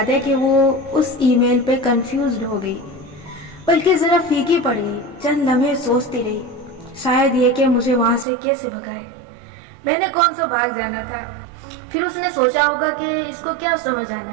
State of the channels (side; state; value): left; drops out; at 8.2 s